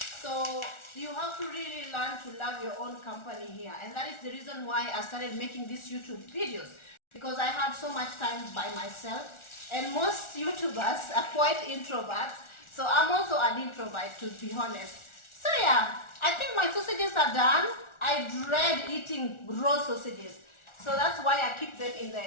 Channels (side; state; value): right; late; 1.4 ms